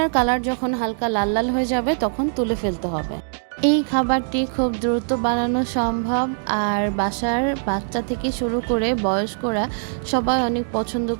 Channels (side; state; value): left; silent; digital silence